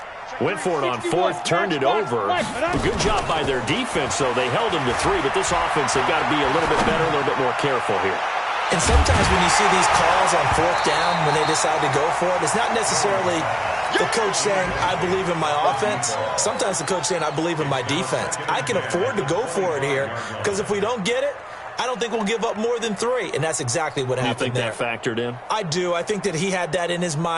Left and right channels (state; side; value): identical; both; correlation 1.00